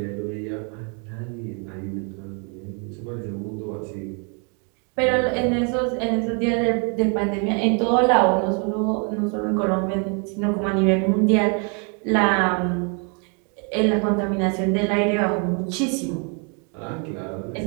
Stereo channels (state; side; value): quieter; left; 37.6 dB